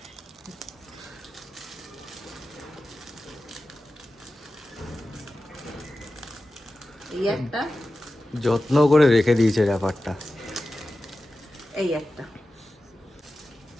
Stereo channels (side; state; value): both; normal; correlation 0.94